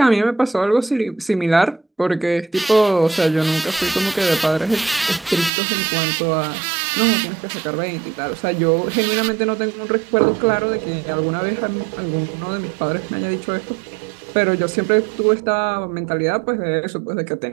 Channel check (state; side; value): drops out; left; at 5.5 s